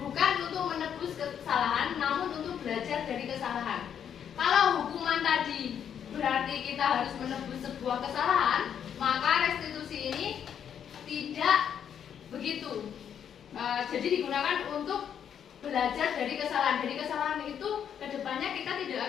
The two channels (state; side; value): quieter; right; 8.6 dB